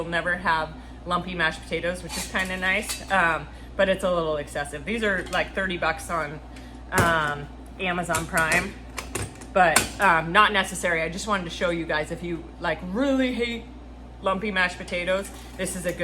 never have lumpy mashed potatoes, which is kind of nice, but it's a little excessive. These are like $30 on Amazon Prime, but not necessary. I just wanted to show you guys, if you like really hate lumpy mashed potatoes, this is a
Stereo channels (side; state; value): both; identical; correlation 1.00